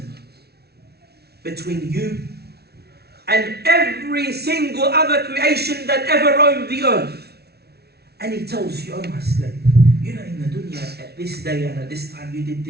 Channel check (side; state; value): left; late; 0.47 ms